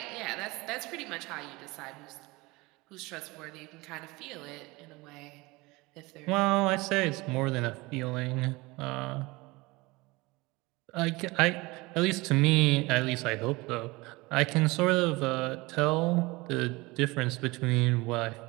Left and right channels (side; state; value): left; quieter; 23.0 dB